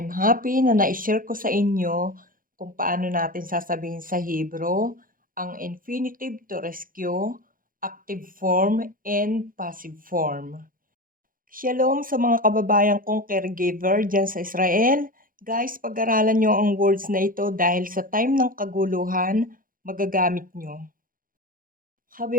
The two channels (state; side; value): late; left; 0.40 ms